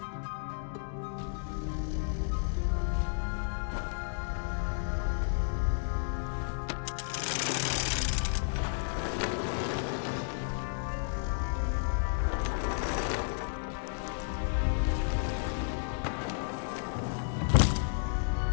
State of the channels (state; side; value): silent; right; digital silence